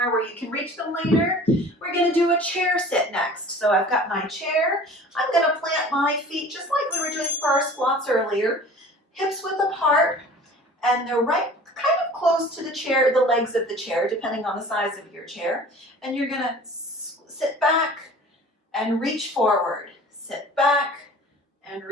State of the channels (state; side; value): normal; both; correlation 0.44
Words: where you can reach them later. We're going to do a chair sit next. So I've got my chair. I'm going to plant my feet just like we were doing for our squats earlier. Hips width apart, and they're right kind of close to the chair, the legs of the chair, depending on the size of your chair. And you're going to sit back and reach forward. Sit back and